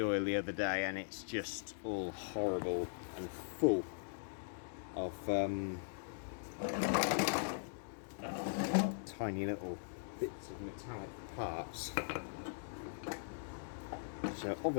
oil the other day, and it's just all horrible and full of tiny little bits of metallic parts. So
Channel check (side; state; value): right; silent; digital silence